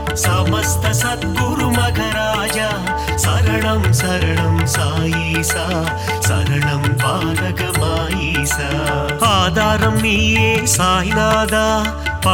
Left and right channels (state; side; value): identical; both; correlation 1.00